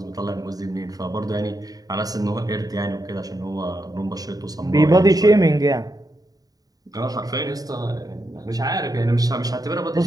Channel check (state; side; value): late; left; 0.18 ms